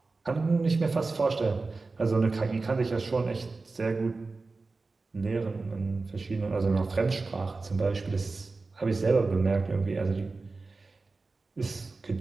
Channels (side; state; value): left; quieter; 3.8 dB